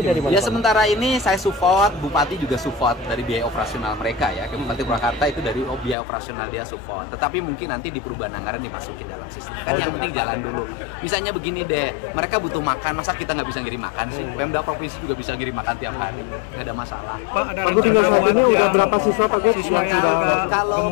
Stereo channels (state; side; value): drops out; right; at 6.0 s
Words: dari mana? Ya sementara ini saya support, Bupati juga support dari biaya operasional mereka ya. Bupati Purwakarta itu dari biaya operasional dia support. Tetapi mungkin nanti di perubahan anggaran dimasukin dalam sistem. Kan yang penting jalan dulu. Misalnya begini deh, mereka butuh makan, masa kita nggak bisa ngirim makan sih? Pemda provinsi juga bisa ngirim makan tiap hari, nggak ada masalah. Pak, ada rencana buat ini udah berapa siswa Pak? Siswa yang agak kalau